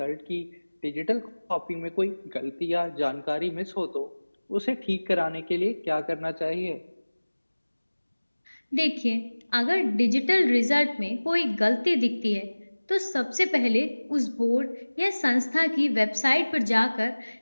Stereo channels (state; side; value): inverted; both; correlation -1.00